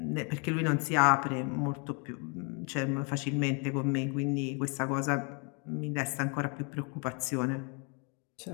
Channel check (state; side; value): quieter; right; 36.1 dB